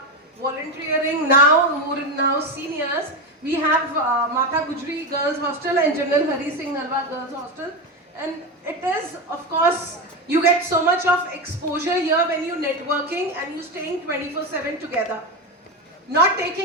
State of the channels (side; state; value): both; normal; correlation 0.14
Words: volunteering now, who are now seniors. We have Mata Gujri Girls Hostel and General Hari Singh Nalwa Girls Hostel. And it is, of course, you get so much of exposure here when you're networking and you're staying 24/7 together. Not